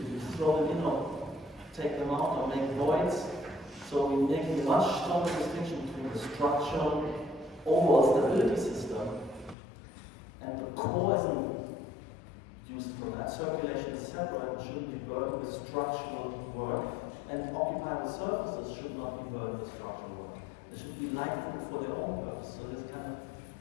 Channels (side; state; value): right; drops out; at 9.6 s